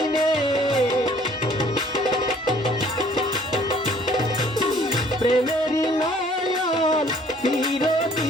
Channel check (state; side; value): normal; both; correlation 0.57